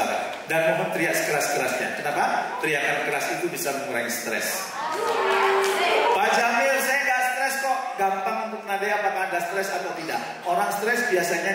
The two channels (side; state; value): both; identical; correlation 1.00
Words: Dan mohon teriak sekeras-kerasnya. Kenapa? Teriakan keras itu bisa mengurangi stres. Pak Jamil, saya nggak stres kok. Gampang untuk menandai apakah Anda stres atau tidak. Orang stres biasanya